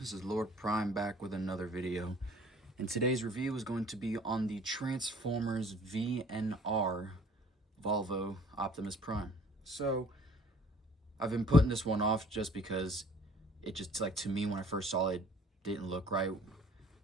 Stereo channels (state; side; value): normal; both; correlation 0.54